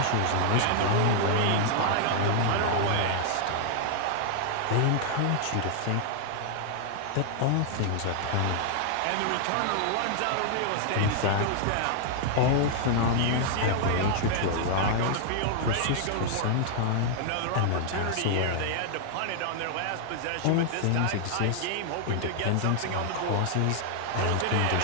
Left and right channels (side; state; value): both; different; correlation 0.00